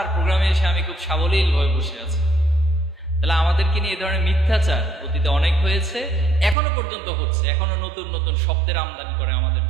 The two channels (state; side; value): drops out; left; at 6.6 s